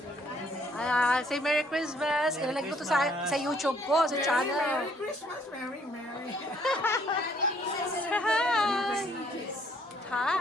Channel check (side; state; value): both; normal; correlation 0.65